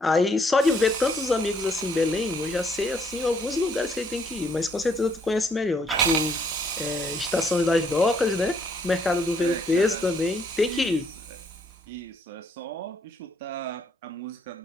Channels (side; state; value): both; normal; correlation 0.68